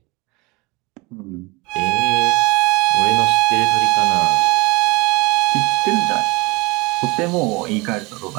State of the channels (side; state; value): left; quieter; 25.5 dB